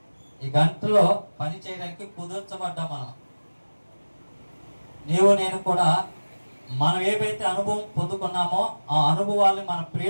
ఈ గంటలో పని చేయడానికి కుదుర్చబడ్డా మనం. నీవు నేను కూడా మనం ఏవైతే అనుభవం పొందుకున్నామో ఆ అనుభవాల్ని మన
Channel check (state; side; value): inverted; both; correlation -1.00